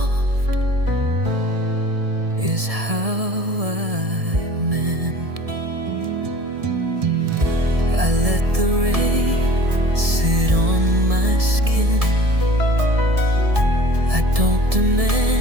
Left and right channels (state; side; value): late; left; 1.7 ms